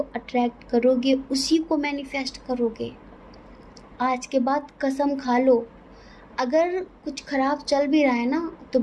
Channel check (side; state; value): both; identical; correlation 1.00